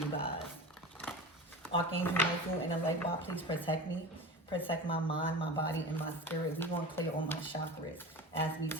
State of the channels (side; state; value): both; normal; correlation 0.32